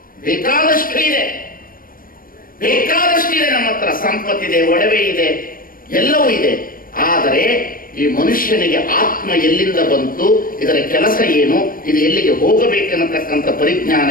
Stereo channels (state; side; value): late; right; 0.41 ms